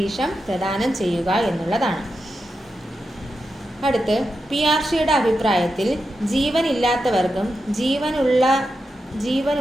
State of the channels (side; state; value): both; normal; correlation 0.89